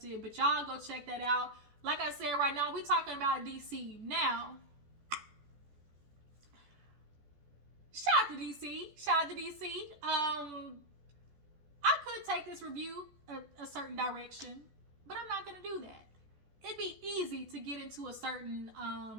but y'all go check that out. Like I said, right now, we talking about DC. Now, shout out to DC. I could take this review a certain direction, but I'm not going to do that. It'd be easy to get into a certain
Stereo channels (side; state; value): left; late; 14 ms